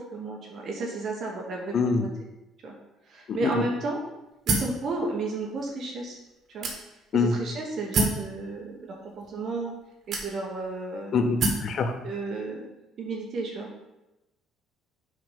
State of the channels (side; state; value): both; normal; correlation 0.63